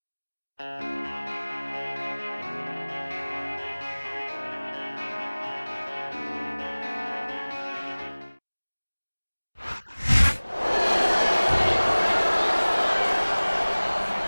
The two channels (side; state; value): both; inverted; correlation -1.00